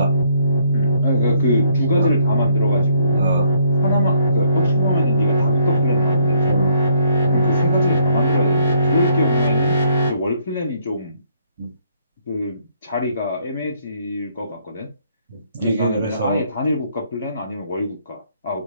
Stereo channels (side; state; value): both; inverted; correlation -0.68